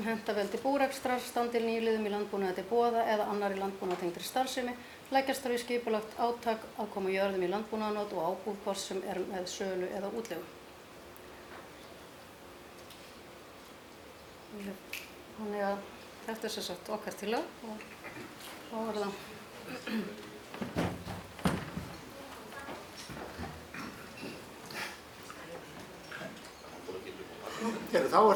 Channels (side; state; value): both; identical; correlation 1.00